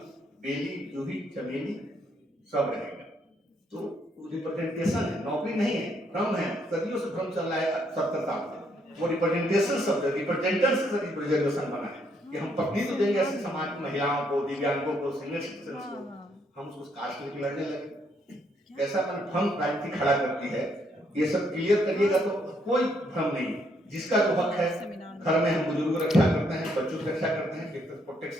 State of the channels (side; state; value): both; normal; correlation 0.72